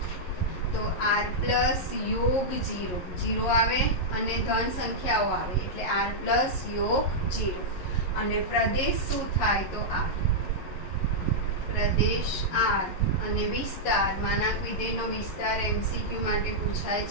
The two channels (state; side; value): late; right; 11 ms